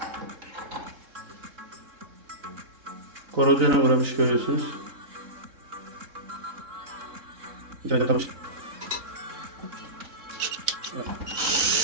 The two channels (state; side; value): late; left; 3.8 ms